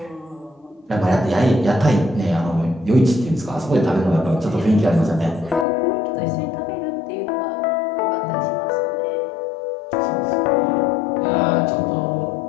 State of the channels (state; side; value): drops out; right; at 5.7 s